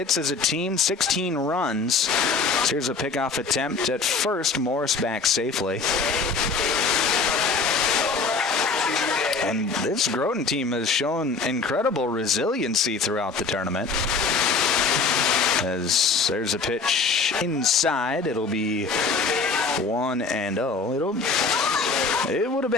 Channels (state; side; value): quieter; right; 4.4 dB